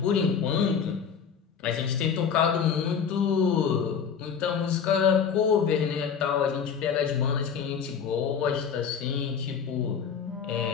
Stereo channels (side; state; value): right; quieter; 6.9 dB